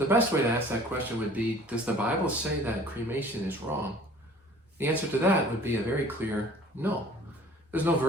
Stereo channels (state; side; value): normal; both; correlation 0.50